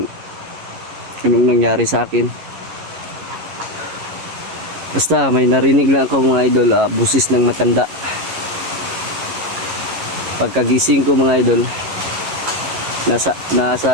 anong nangyari sa akin. Basta may narinig lang ako mga idol, busis ng matanda. Pagkagising ko mga idol,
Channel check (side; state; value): left; late; 11 ms